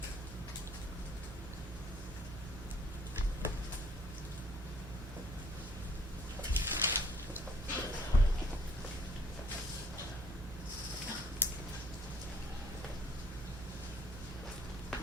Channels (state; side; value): normal; both; correlation 0.60